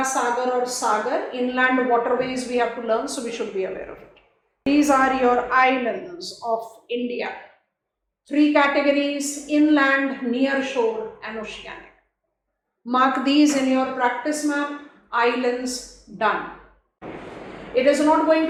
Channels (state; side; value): identical; both; correlation 1.00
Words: Sagar or Sagar, inland waterways we have to learn, so we should be aware of it. These are your islands of India. 3 categories: inland, near shore and oceanic. Mark these in your practice map. Islands, done. It is not going